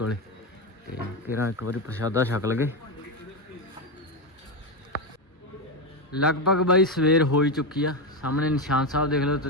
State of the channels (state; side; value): normal; both; correlation 0.11